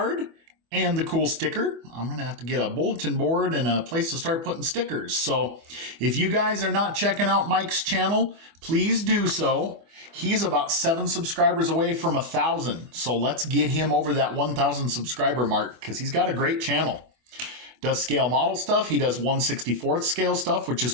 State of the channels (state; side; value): late; left; 24 ms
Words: and the cool sticker. I'm going to have to get a bulletin board and a place to start putting stickers. So if you guys are not checking out Mike's channel, please do so. He's about 7 subscribers away from 1,000. So let's get him over that 1,000 subscriber mark because he's got a great channel. Does scale model stuff. He does 1/64th scale stuff, which is